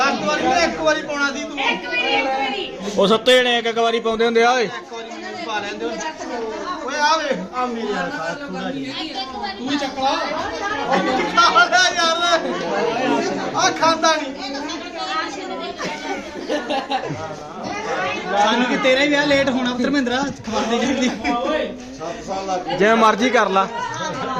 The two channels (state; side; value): identical; both; correlation 1.00